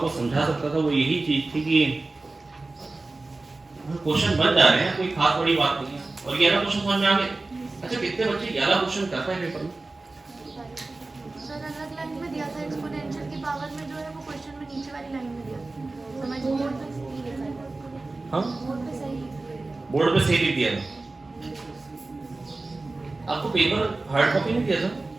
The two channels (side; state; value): left; quieter; 3.3 dB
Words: समझा सकता था वो यही चीज थी कि क्वेश्चन बन जा रहे हैं, कोई खास बड़ी बात नहीं है। और 11 क्वेश्चन समझ में आ गए? अच्छा, कितने बच्चे 11 क्वेश्चन करते हैं पेपर में? सर अलग लाइन में दिया था, एक्सपोनेंशियल की पावर में जो है वो क्वेश्चन में नीचे वाली लाइन में दिया था। समझ बोर्ड पे सही लिखा है। हां, बोर्ड पे सही लिख दिया। आपको पेपर हार्ड कॉपी नहीं दिया था?